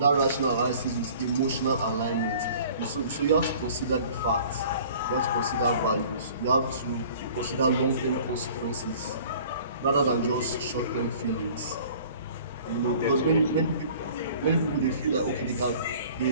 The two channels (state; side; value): inverted; both; correlation -0.48